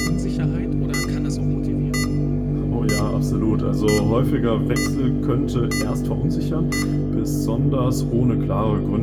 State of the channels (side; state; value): both; identical; correlation 1.00